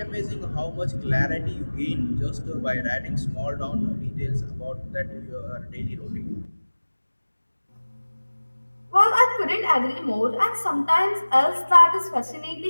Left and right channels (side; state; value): both; inverted; correlation -1.00